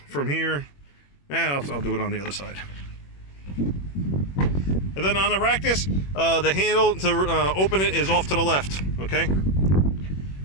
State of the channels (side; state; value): right; late; 21 ms